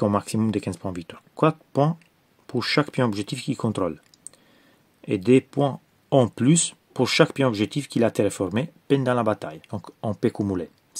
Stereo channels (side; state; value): both; identical; correlation 1.00